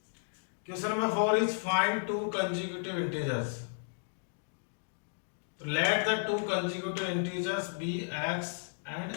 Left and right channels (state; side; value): silent; right; digital silence